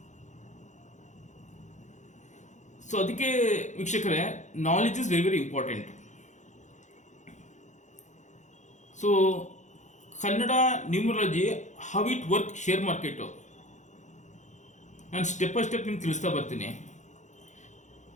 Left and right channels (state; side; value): late; right; 0.35 ms